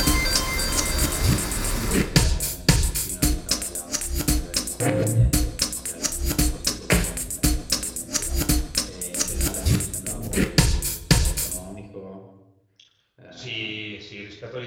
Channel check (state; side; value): identical; both; correlation 1.00